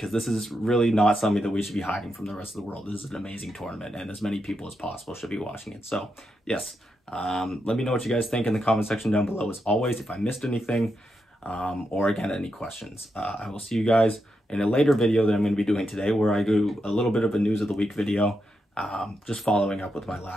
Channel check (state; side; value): normal; both; correlation 0.84